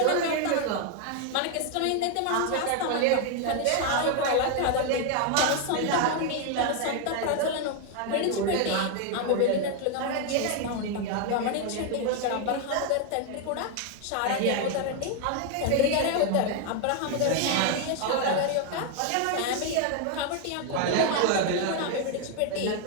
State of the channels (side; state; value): both; different; correlation 0.01